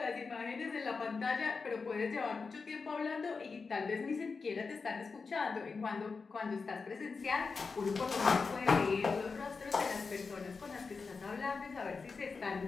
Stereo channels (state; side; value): quieter; right; 4.7 dB